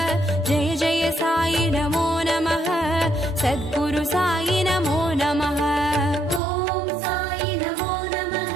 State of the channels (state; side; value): drops out; left; at 6.4 s